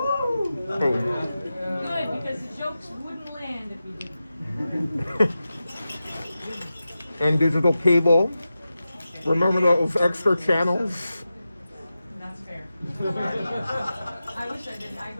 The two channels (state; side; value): inverted; both; correlation -0.92